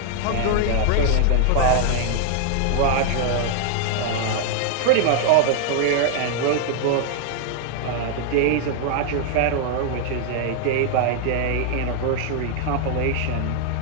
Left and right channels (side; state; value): both; different; correlation 0.00